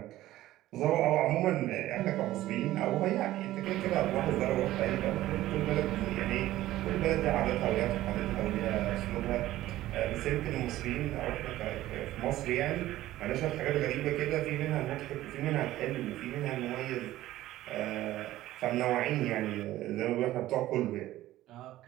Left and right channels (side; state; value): left; quieter; 15.2 dB